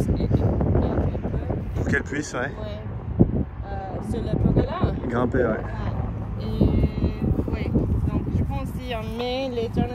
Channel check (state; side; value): identical; both; correlation 1.00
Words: Pour qu'elle puisse, ouais. Sur le pergola. Grimper, ouais. Et oui, donc je pense si on met les